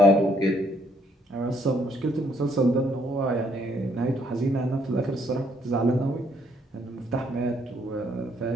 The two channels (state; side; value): normal; both; correlation 0.69